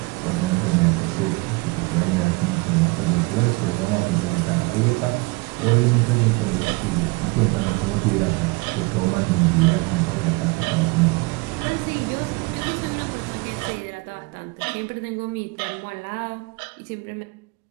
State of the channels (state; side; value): quieter; left; 26.5 dB